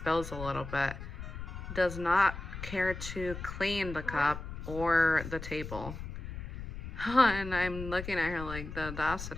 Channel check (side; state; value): left; noise; rumble, 9 dB below the sound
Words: a little bit. Does not care to clean the cup or the table. And I'm looking at her like, the